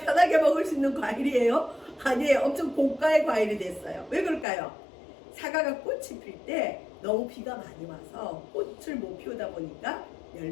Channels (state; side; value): drops out; right; at 4.5 s